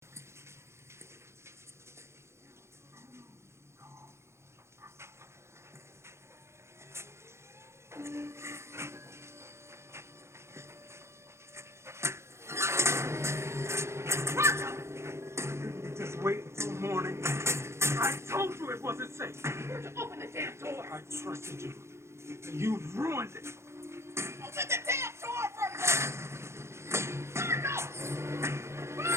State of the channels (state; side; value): late; left; 0.13 ms